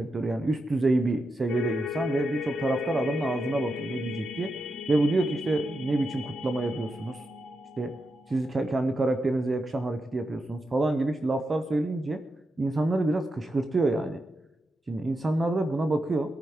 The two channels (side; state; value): both; normal; correlation 0.87